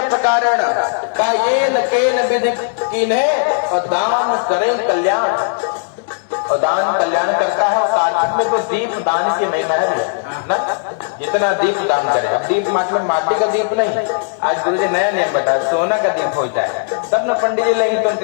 प्रकारण का ये न केन विधि कीन्हे और दान करें कल्याण, और दान कल्याण करता है। और कार्तिक में तो दीप दान की महिमा है ना, जितना दीप दान करे। अब दीप मतलब माटी का दीप नहीं, आज गुरु जी नया नियम बताया, सोना का दीप हो जाए तब न पंडित जी लेंगे तो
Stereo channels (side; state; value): right; silent; digital silence